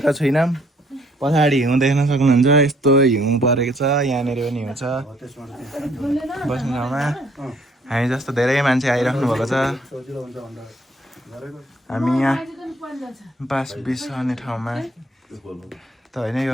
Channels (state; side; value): normal; both; correlation 0.64